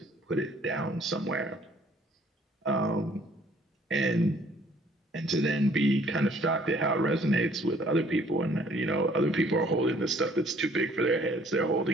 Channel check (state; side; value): normal; both; correlation 0.59